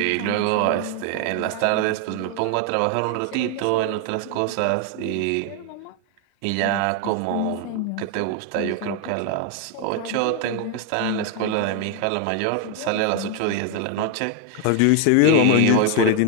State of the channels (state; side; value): different; both; correlation 0.01